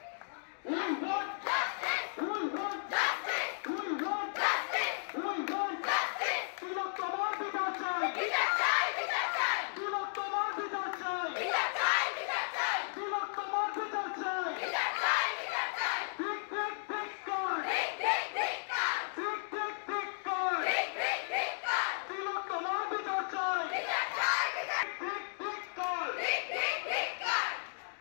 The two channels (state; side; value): silent; right; digital silence